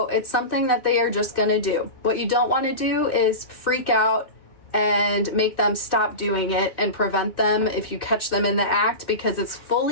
it's something that they are just gonna do. What you don't want to do is freak out and make them stop doing it and prevent them if you catch them in the act, because it's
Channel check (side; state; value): right; late; 2.6 ms